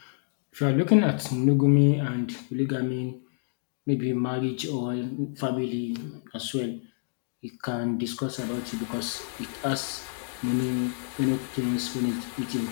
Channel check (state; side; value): silent; right; digital silence